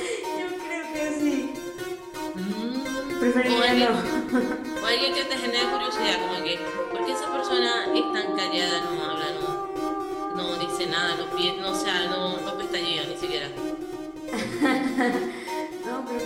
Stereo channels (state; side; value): identical; both; correlation 1.00